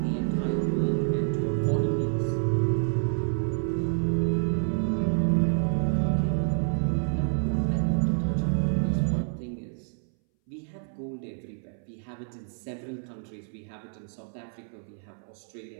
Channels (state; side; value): silent; left; 59 dB below the other